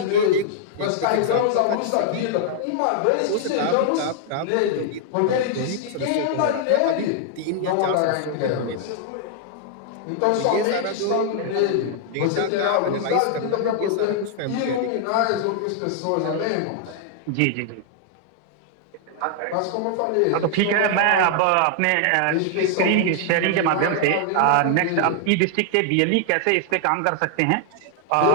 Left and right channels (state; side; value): different; both; correlation 0.00